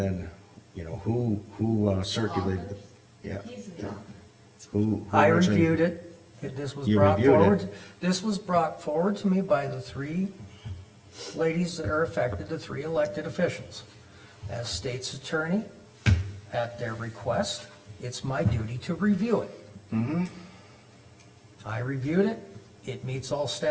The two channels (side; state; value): both; identical; correlation 1.00